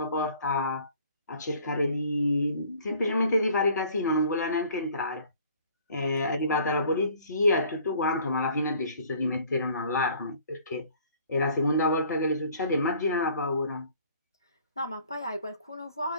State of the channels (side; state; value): both; inverted; correlation -0.54